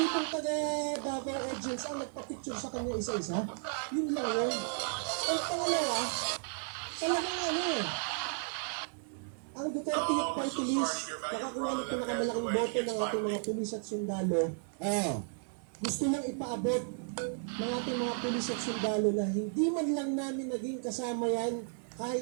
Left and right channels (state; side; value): silent; left; 55 dB below the other